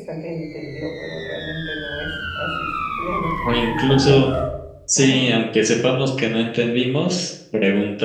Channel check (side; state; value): both; identical; correlation 1.00